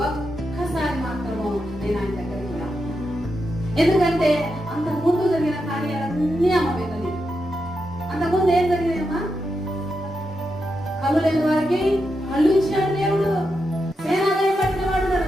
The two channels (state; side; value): normal; both; correlation 0.86